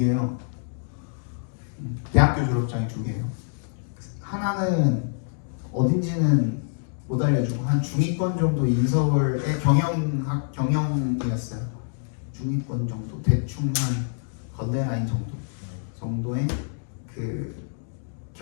대학교 졸업장이 2개예요. 하나는 어딘지는 못 알려주고 한 중위권 정도 인서울의 경영이었어요. 중위권 정도 대충 한 건대라인 정도의 그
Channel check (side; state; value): right; silent; digital silence